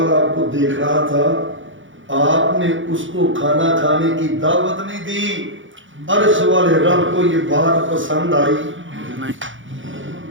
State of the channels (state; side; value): late; left; 0.56 ms